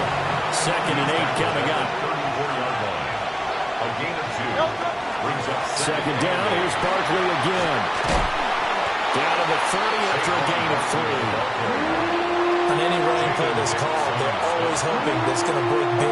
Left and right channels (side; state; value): both; identical; correlation 1.00